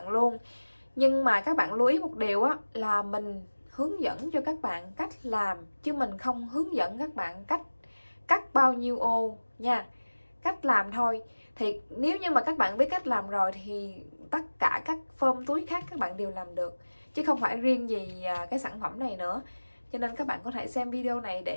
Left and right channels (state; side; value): inverted; both; correlation -1.00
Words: luôn. Nhưng mà các bạn lưu ý một điều á, là mình hướng dẫn cho các bạn cách làm, chứ mình không hướng dẫn các bạn cách cắt bao nhiêu ô nha. Cách làm thôi. Thì nếu như mà các bạn biết cách làm rồi thì tất cả các form túi khác các bạn đều làm được, chứ không phải riêng gì cái sản phẩm này nữa. Cho nên các bạn có thể xem video này